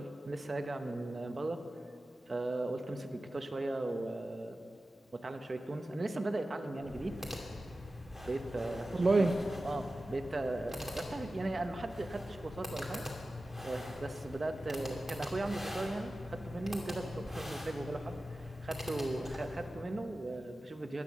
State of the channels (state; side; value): normal; both; correlation 0.95